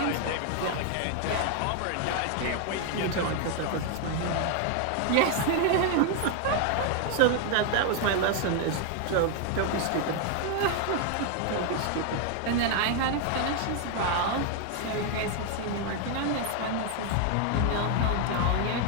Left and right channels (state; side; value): different; both; correlation 0.00